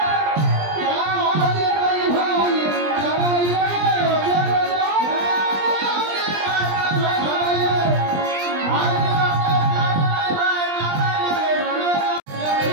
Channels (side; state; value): left; late; 20 ms